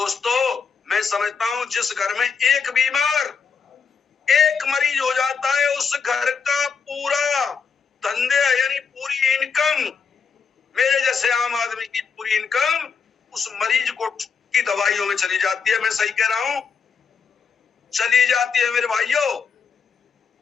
मैं समझता हूँ जिस घर में एक बीमार, एक मरीज हो जाता है, उस घर का पूरा धंधे यानी पूरी इनकम, मेरे जैसे आम आदमी की पूरी इनकम उस मरीज को की दवाइयों में चली जाती है। मैं सही कह रहा हूं? चली जाती है मेरे भाइयों।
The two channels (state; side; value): quieter; right; 5.9 dB